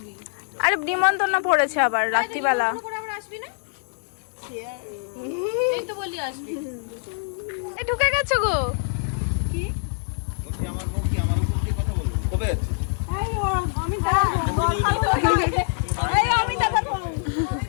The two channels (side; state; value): right; silent; digital silence